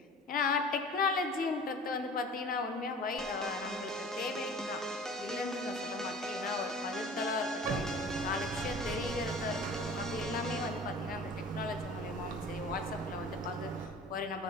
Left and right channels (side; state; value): both; normal; correlation 0.43